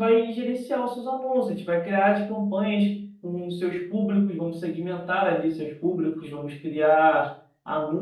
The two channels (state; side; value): identical; both; correlation 1.00